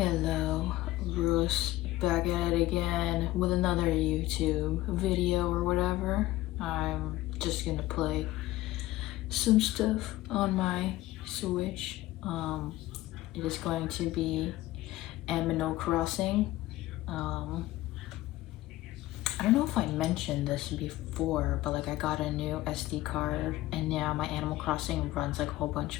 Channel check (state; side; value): quieter; right; 16.8 dB